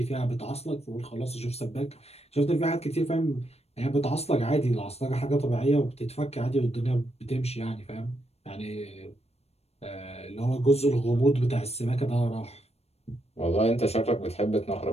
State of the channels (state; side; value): late; right; 0.30 ms